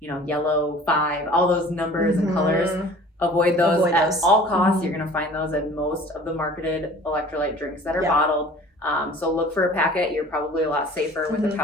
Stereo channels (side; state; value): both; normal; correlation 0.46